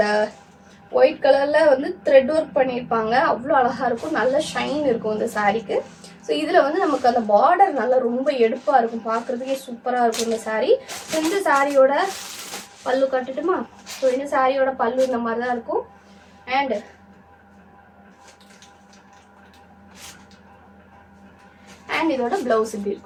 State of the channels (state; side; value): identical; both; correlation 1.00